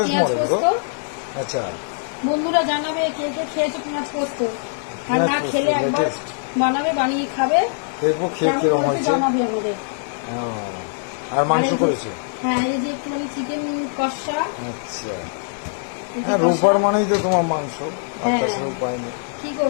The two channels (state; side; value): silent; right; digital silence